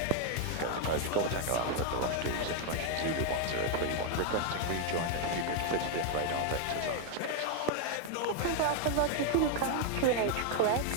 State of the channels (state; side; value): different; both; correlation 0.00